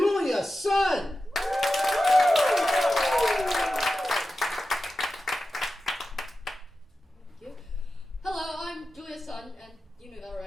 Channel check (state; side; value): normal; both; correlation 0.93